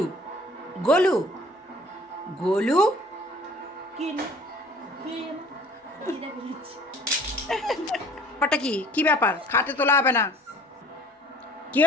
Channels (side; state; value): both; normal; correlation 0.50